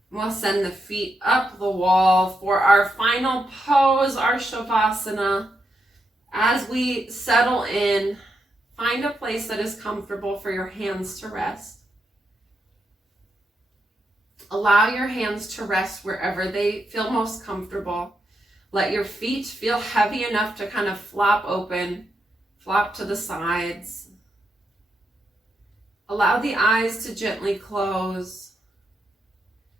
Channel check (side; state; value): both; normal; correlation 0.83